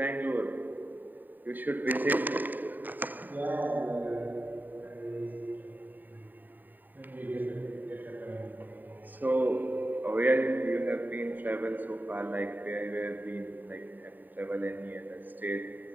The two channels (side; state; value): left; late; 0.089 ms